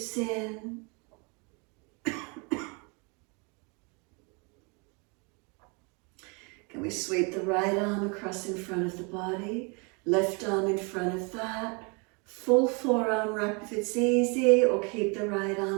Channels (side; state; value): left; quieter; 32.1 dB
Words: in. Can we sweep the right arm across in front of the body, left arm in front of that, full forearm wrap if it's easy, or keep the right